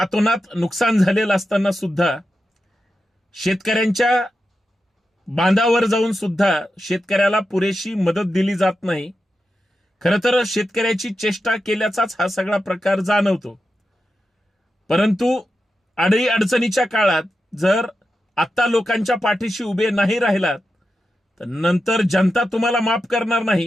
नुकसान झालेलं असताना सुद्धा शेतकऱ्यांच्या बांधावर जाऊन सुद्धा शेतकऱ्याला पुरेशी मदत दिली जात नाही. खरं तर शेतकऱ्याची चेष्टा केल्याचाच हा सगळा प्रकार जाणवतो. परंतु अडी अडचणीच्या काळात जर आता लोकांच्या पाठीशी उभे नाही राहिलात तर नंतर जनता तुम्हाला माफ करणार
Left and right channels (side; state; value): both; normal; correlation 0.90